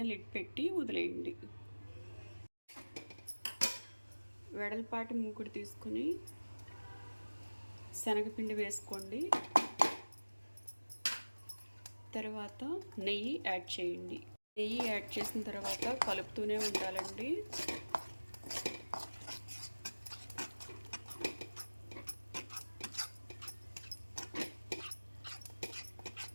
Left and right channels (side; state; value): both; inverted; correlation -1.00